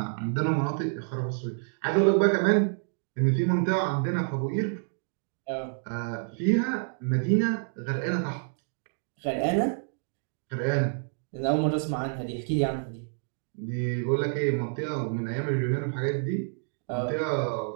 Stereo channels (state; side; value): silent; left; digital silence